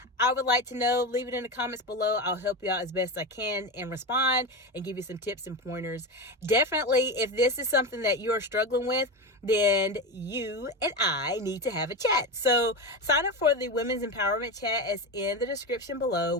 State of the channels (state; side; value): normal; both; correlation 0.19